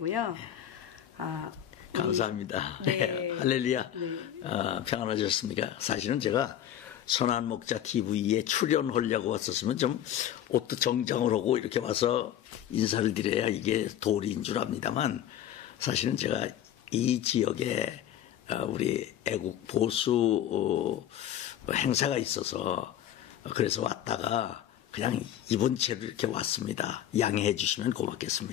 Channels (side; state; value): right; quieter; 11.1 dB